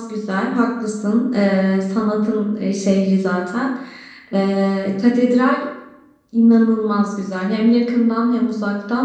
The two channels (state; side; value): identical; both; correlation 1.00